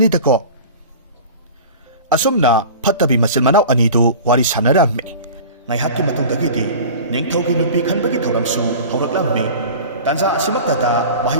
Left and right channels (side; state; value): both; inverted; correlation -0.37